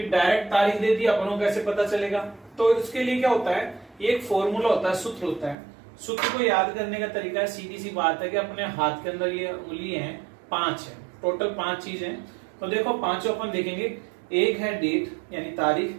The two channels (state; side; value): drops out; left; at 5.6 s